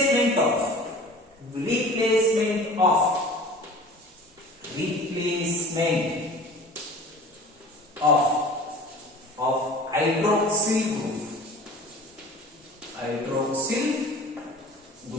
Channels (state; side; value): normal; both; correlation 0.42